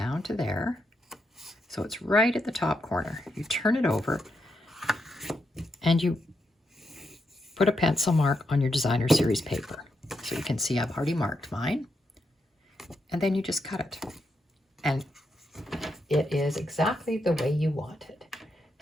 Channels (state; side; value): normal; both; correlation 0.83